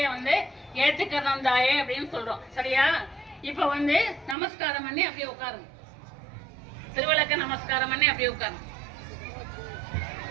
வந்து ஏற்றுக்கிறோம் தாயே அப்படின்னு சொல்றோம். சரியா? இப்ப வந்து நமஸ்காரம் பண்ணி அப்படியே உட்காருங்க. திருவிளக்க நமஸ்காரம் பண்ணி அப்படியே உட்காருங்க.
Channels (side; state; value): left; drops out; at 4.4 s